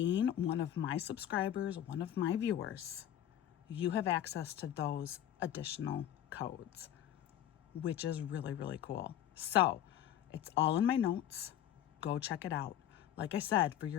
one of my subscribers, one of my viewers, you have access to those additional codes, which is really cool. So it's all in my notes. Go check it out. Like I said, for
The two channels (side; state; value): right; quieter; 11.1 dB